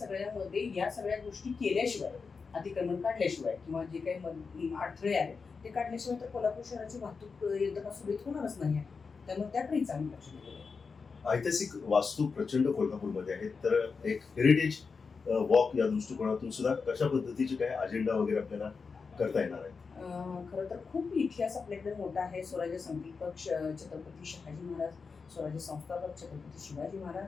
या सगळ्या गोष्टी केल्याशिवाय, अतिक्रमण काढल्याशिवाय किंवा जे काही अडथळे आहेत ते काढल्याशिवाय तर कोल्हापूर शहराची वाहतूक यंत्रणा सुरळीत होणारच नाही आहे. त्यामुळे त्याकडेही चांगलं लक्ष दिलेलं आहे. ऐतिहासिक वास्तू प्रचंड कोल्हापूरमध्ये आहेत, तर एक हेरिटेज वॉक या दृष्टिकोनातून सुद्धा कशा पद्धतीचे काय अजेंडा वगैरे आपल्याला करता येणार आहे? खरं तर खूप इतिहास आपल्याकडे मोठा आहे. स्वराज्य संकल्पक छत्रपती शहाजी महाराज, स्वराज्य संस्थापक छत्रपती शिवाजी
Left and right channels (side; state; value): right; quieter; 5.0 dB